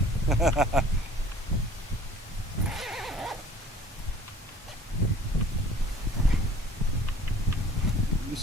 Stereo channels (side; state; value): both; normal; correlation 0.50